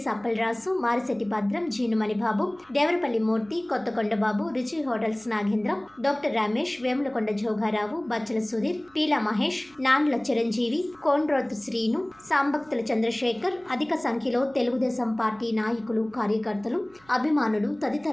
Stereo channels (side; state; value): right; noise; hum, 29 dB below the sound